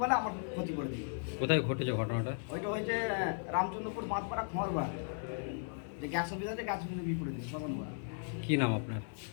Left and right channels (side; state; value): right; silent; digital silence